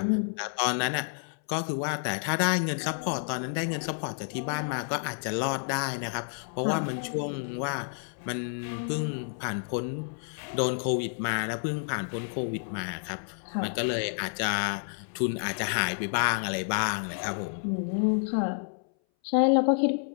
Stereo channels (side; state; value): right; silent; 58 dB below the other